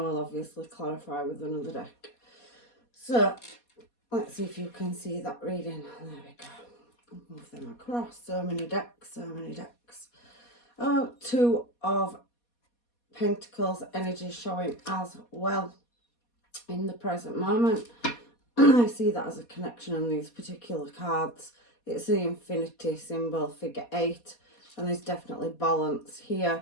obviously clarify with another deck. So let's see if you can see that reading. There we go. Move them across. So many decks, so many decks. Oh, Two of Pentacles energy showing as well in the present moment. I see that as a connection on these particular cards. It's the infinity symbol, figure 8, and there's definitely balance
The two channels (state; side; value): late; right; 4.2 ms